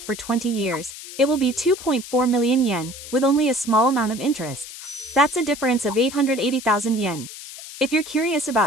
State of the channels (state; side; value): noise; left; hiss, 13 dB below the sound